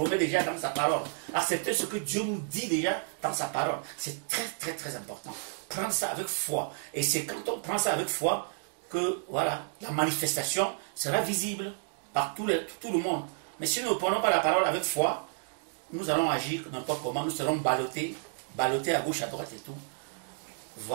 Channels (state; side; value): silent; left; digital silence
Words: déjà dans sa parole. Accepter ce que Dieu nous dit déjà dans sa parole. C'est très, très, très important. Prendre ça avec foi. Et c'est quand on prend ça avec foi que, voilà, la manifestation sera visible par tout le monde. Mais si nous ne prenons pas la parole avec foi, nous allons agir n'importe comment, nous serons ballottés à gauche, à droite et tout.